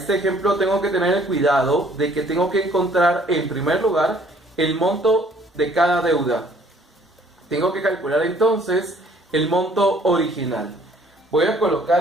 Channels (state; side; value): normal; both; correlation 0.59